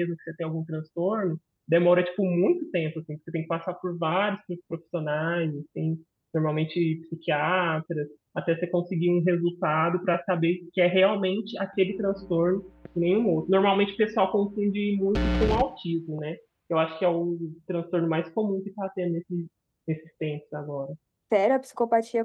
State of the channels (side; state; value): both; identical; correlation 1.00